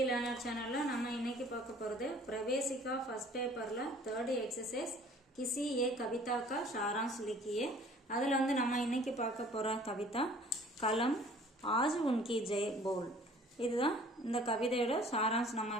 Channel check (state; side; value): normal; both; correlation 0.52